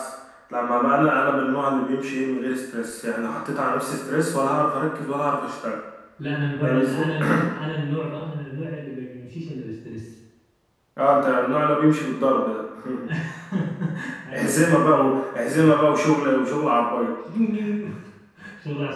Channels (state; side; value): identical; both; correlation 1.00